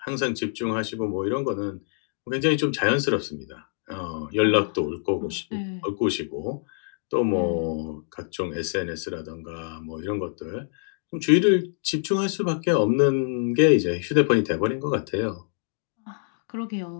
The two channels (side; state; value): right; silent; 59 dB below the other